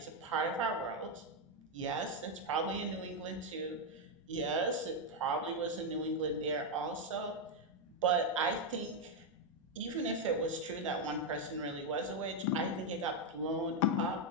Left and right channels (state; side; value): normal; both; correlation 0.02